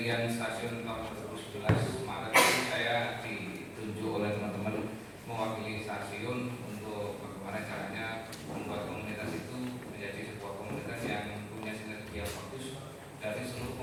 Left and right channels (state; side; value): identical; both; correlation 1.00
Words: stasiun tahun 2011 Maret ini saya ditunjuk oleh teman-teman mewakili stasiun untuk bagaimana caranya membuat komunitas itu menjadi sebuah komunitas yang punya sinergi yang bagus dari seluruh